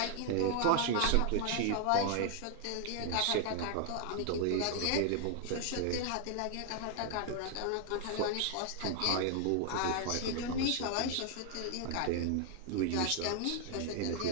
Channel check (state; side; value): different; both; correlation 0.00